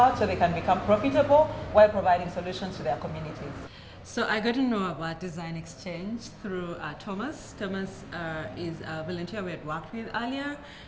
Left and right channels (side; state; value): both; identical; correlation 1.00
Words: so they can become profitable while providing solutions to their communities. So I got to know about Design Exchange through Thomas. Thomas is a volunteer we had worked with earlier.